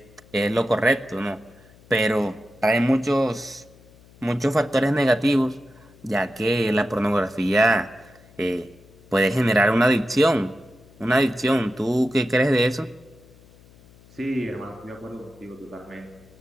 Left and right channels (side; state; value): left; noise; hum, 26 dB below the sound